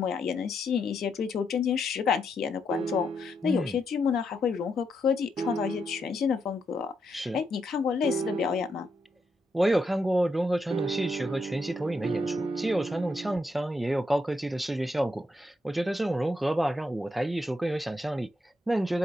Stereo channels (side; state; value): both; normal; correlation 0.81